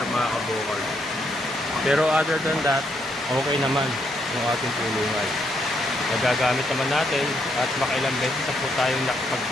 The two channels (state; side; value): normal; both; correlation 0.75